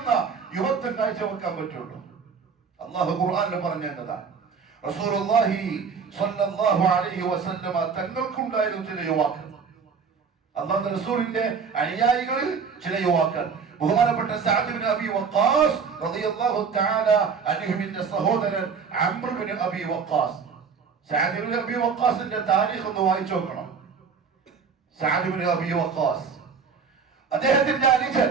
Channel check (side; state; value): left; quieter; 5.8 dB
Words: യുവത്വം കാഴ്ചവെക്കാൻ പറ്റുള്ളൂ. അല്ലാഹു ഖുർആനിൽ പറഞ്ഞതാണ്, റസൂലുള്ളാഹി സ്വല്ലല്ലാഹു അലൈഹി വസല്ലമ തങ്ങൾക്കുണ്ടായിരുന്നു ചില യുവാക്കൾ. അല്ലാഹുവിന്റെ റസൂലിന്റെ അനുയായികളിൽ ചില യുവാക്കൾ. ബഹുമാനപ്പെട്ട സഅദ് ഇബ്നു അബി വഖാസ് റളിയല്ലാഹു തആല അൻഹുവിന്റെ സഹോദരൻ അംർ ഇബ്നു അബി വഖാസ്. സഅദ് ഇബ്നു അബി വഖാസിന്റെ താരീഖ് ഒന്ന് വായിച്ചു നോക്കണം. സഅദ് ഇബ്നു അബി വഖാസ് അദ്ദേഹത്തിന്റെ അനുജൻ